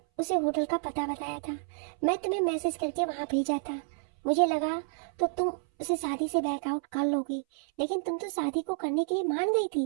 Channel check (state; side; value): silent; left; 58 dB below the other